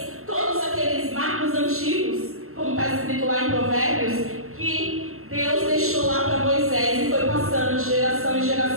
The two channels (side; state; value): left; late; 0.63 ms